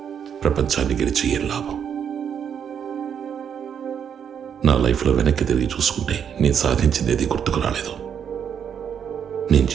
ప్రపంచాన్ని గెలిచి ఏం లాభం? నా లైఫ్లో వెనక్కి తిరిగి చూసుకుంటే నేను సాధించింది గుర్తుకు రాలేదు. నేను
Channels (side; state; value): left; quieter; 8.0 dB